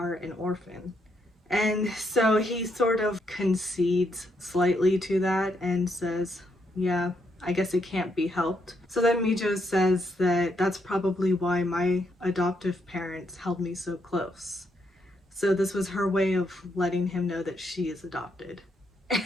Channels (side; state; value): both; normal; correlation 0.77